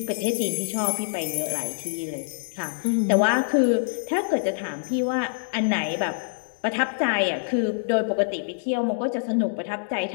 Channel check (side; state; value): right; silent; 61 dB below the other